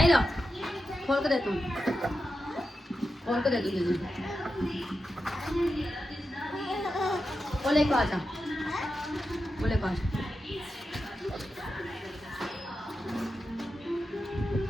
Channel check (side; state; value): both; normal; correlation 0.89